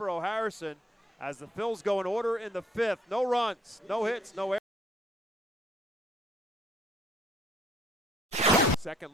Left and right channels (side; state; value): both; normal; correlation 0.64